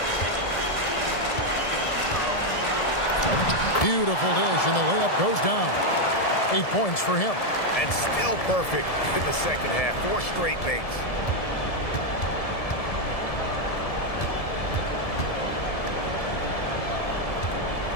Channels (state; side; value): late; right; 1.7 ms